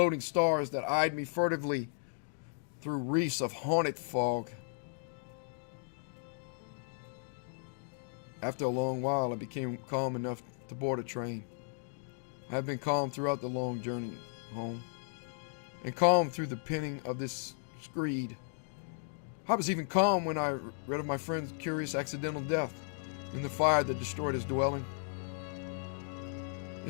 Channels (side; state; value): right; silent; digital silence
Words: stars that eyed me furtively through wreaths of haunted fog. After a long while, I became calm enough to board a train. I have been calm throughout the long journey home, and calm through the penning of this screed. I was even calm when I read of my friend's curious accidental death in the fire that destroyed his dwelling. It